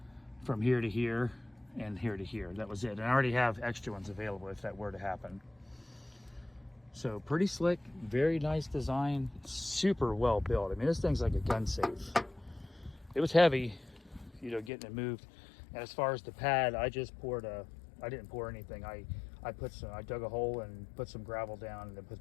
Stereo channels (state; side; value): drops out; right; at 14.7 s